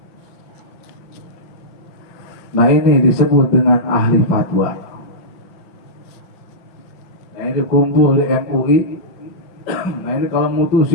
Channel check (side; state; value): right; late; 5.8 ms